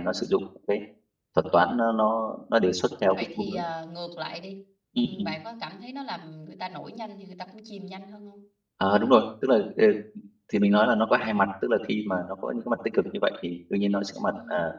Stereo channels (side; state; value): both; identical; correlation 1.00